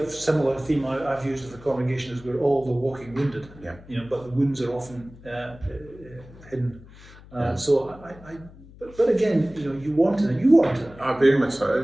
similar theme I've used with the congregation is we're all the walking wounded. But the wounds are often hidden. So But again, you want it. Very much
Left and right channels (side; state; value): left; noise; hum, 21 dB below the sound